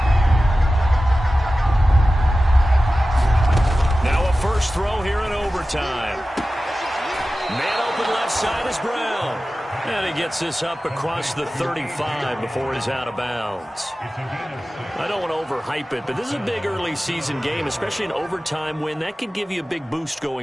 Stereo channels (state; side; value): normal; both; correlation 0.95